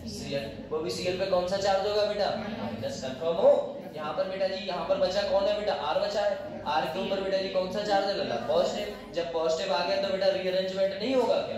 Cl, वो भी Cl पे कौन सा चार्ज होगा बेटा माइनस। कंफर्म हो। यहाँ पर बेटा जी, यहाँ पर बचा कौन है बेटा, R बचा है। R के ऊपर बेटा जी कौन सा चार्ज है लगा, पॉजिटिव। जब पॉजिटिव आ गया तो बेटा रीअरेंजमेंट नहीं होगा,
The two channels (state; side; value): identical; both; correlation 1.00